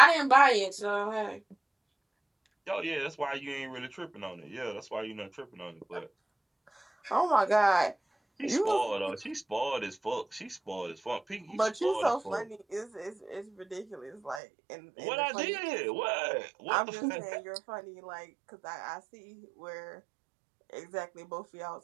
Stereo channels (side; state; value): left; drops out; at 14.4 s